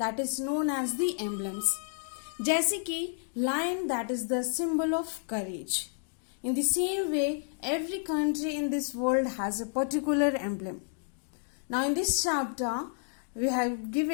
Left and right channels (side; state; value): right; silent; 57 dB below the other